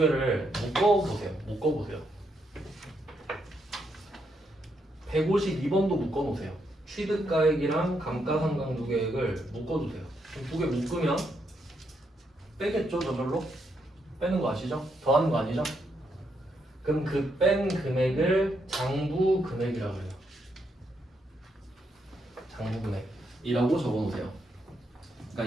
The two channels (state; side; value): normal; both; correlation 0.79